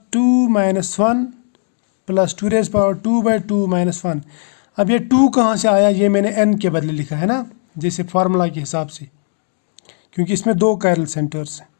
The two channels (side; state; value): right; silent; 61 dB below the other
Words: 2 minus 1 plus 2 raise power 2 by 2 minus 1। अब ये 2 कहाँ से आया, ये मैंने n के बदले लिखा है ना, जैसे फार्मूला के हिसाब से, क्योंकि इसमें 2 कायरल सेंटर्स हैं।